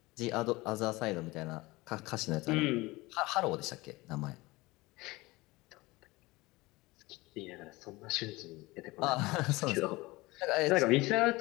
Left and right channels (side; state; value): right; quieter; 21.5 dB